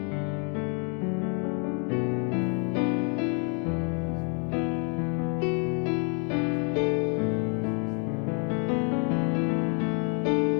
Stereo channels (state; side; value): quieter; right; 35.4 dB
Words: Bapak Ibu yang dikasih Tuhan. Kita berjumpa lagi dalam suasana ibadah dalam minggu